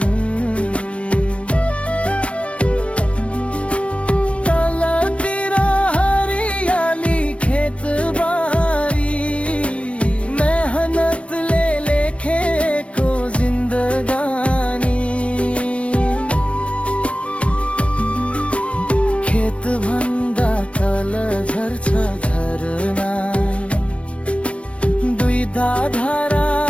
तलतिर हरियाली खेतबारी, मेहनतले लेखेको जिन्दगानी। खेत भन्दा तल झर्छ झरना, दुई धारा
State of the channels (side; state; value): right; late; 0.062 ms